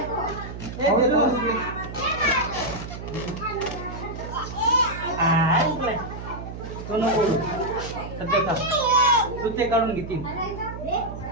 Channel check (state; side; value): noise; right; hum, 10 dB below the sound